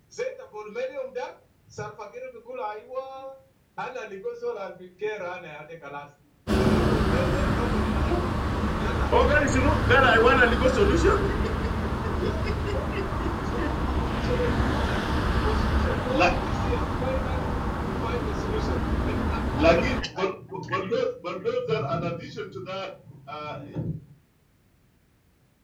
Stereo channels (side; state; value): both; identical; correlation 1.00